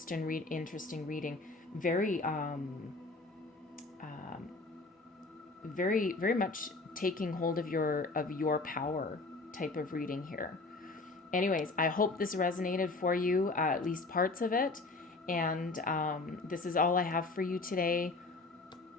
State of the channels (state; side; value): quieter; right; 3.5 dB